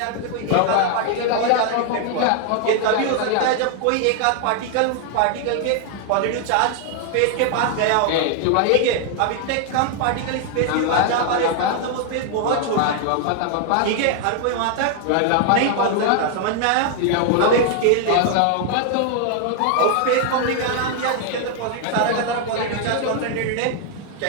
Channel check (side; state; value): both; different; correlation 0.00